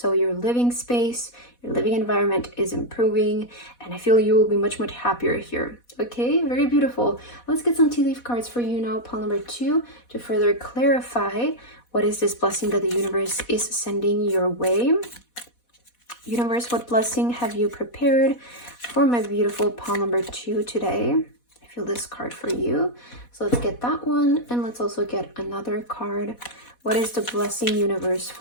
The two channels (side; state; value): right; late; 4.1 ms